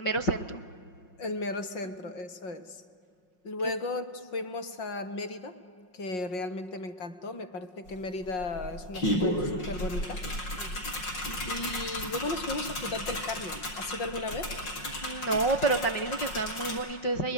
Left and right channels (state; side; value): late; right; 5.5 ms